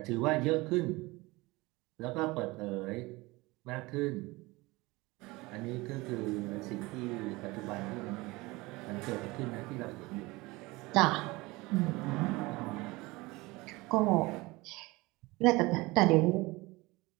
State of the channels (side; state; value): left; quieter; 22.3 dB